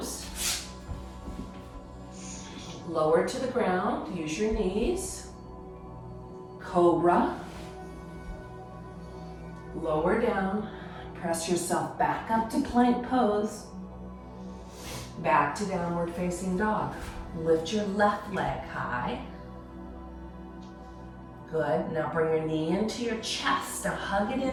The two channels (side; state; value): both; identical; correlation 1.00